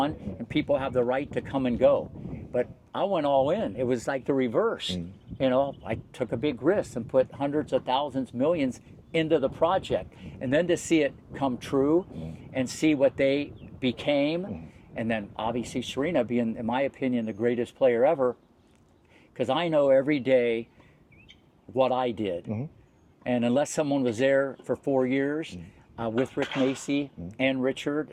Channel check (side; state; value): both; identical; correlation 1.00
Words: and people have the right to come and go. But I went all in. It was like the reverse. You know, I took a big risk and put hundreds of thousands, millions into the project. And then to see it come true and see what they became, and then obviously Serena being, in my opinion, the greatest player ever, because I know every day what I did. And unless someone was there for 4 years with Rick Macci and Richard